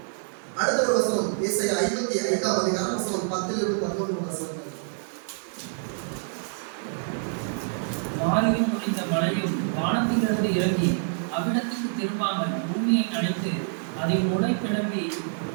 அடுத்த ஒரு வசனம் ஏசாயா 55ஆம் அதிகாரம் வசனம் 10-11 வசனம். வாரியும் முடிந்த மழையும் வானத்திலிருந்து இறங்கி அவ்விடத்துக்கு திரும்பாமல் பூமியை அணைத்து அதை முளை கிளம்பி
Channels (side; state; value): left; silent; 60 dB below the other